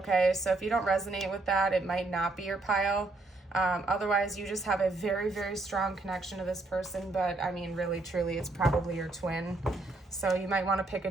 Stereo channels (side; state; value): left; quieter; 3.2 dB